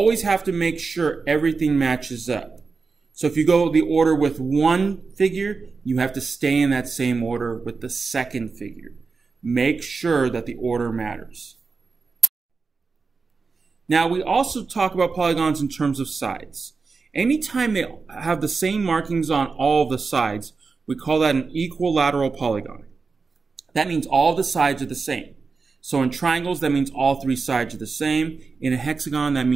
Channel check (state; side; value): quieter; left; 4.6 dB